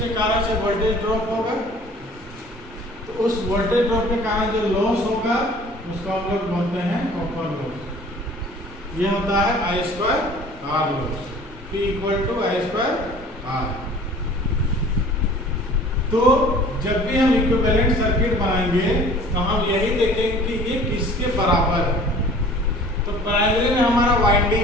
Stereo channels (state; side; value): normal; both; correlation 0.48